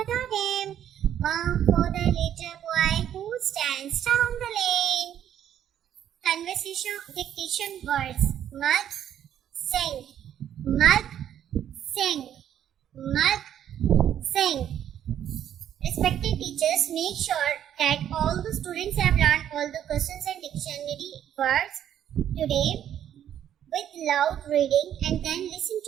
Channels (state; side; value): quieter; left; 10.3 dB